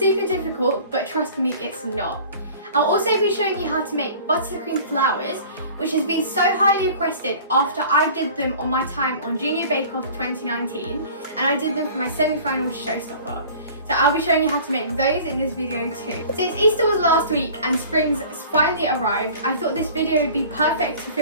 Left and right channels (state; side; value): inverted; both; correlation -0.45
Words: difficult, but trust me, it's not. I'll also be showing you how to make buttercream flowers, which has been so highly requested after I did them on my time on Junior Bake Off 2019, and I did them for my semi-final showstopper. So I'll be showing you how to make those in this video too. Since Easter was last week and spring's finally arrived, I thought this video would be perfect to